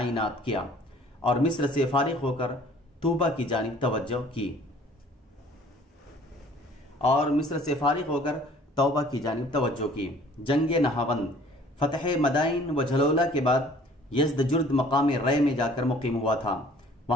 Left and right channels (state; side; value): normal; both; correlation 0.54